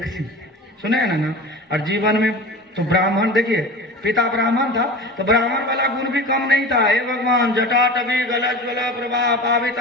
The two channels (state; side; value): normal; both; correlation 0.33